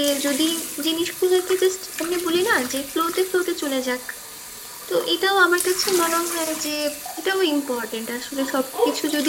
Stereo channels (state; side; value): identical; both; correlation 1.00